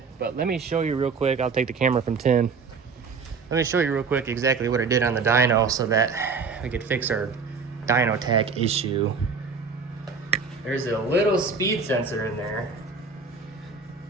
but let me show you real quick. I'll take the camera from Tim. Let me show you real quick exactly what I did on the dyno so that we could fix our dyno tach issue. There's a little speed sensor in there,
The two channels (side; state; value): left; quieter; 5.1 dB